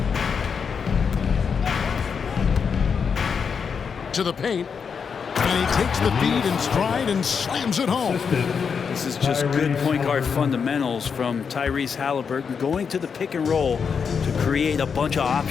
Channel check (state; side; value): quieter; right; 6.2 dB